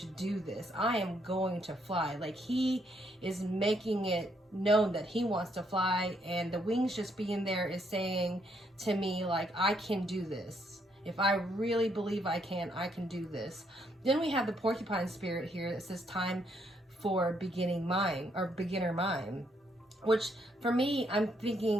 do this. I am going to fly. Like, he is making it known that he wants to fly, and the wings just being there is saying to me, like, I can do this. If I really believe I can do this. Then we have the porcupine spirit here that says time for beginning mind, or beginner mind, which for me, I'm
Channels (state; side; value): normal; both; correlation 0.73